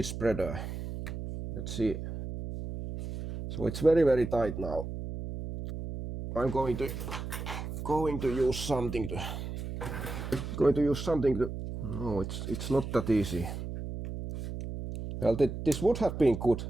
spreader. Let's see. So it's very tight now. I'm going to use something to no, it's not that easy. Well, this would have been good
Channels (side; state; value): right; noise; hum, 7 dB below the sound